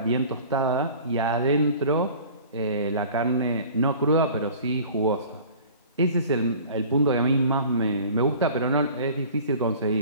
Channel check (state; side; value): inverted; both; correlation -0.45